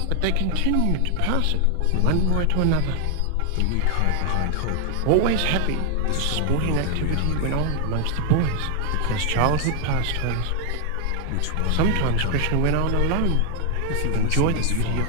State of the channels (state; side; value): different; both; correlation 0.00